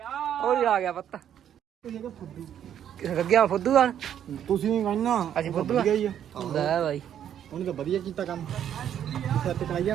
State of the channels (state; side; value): quieter; left; 9.8 dB